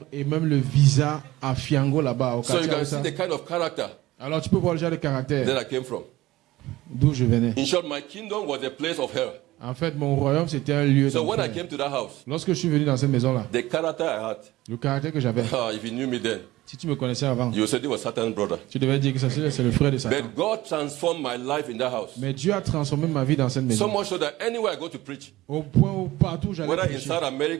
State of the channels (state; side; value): quieter; left; 17.4 dB